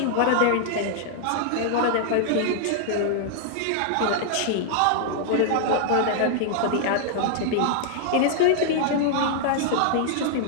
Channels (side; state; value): both; different; correlation -0.01